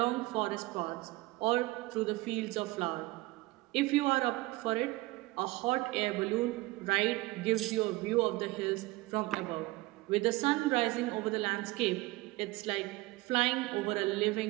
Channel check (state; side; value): quieter; left; 20.7 dB